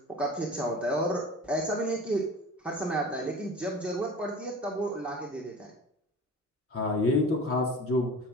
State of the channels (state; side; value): normal; both; correlation 0.39